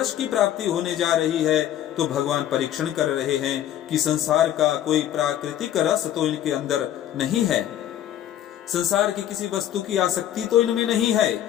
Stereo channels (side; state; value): right; quieter; 11.5 dB